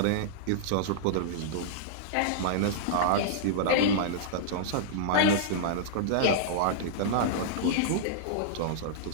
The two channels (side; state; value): both; different; correlation -0.02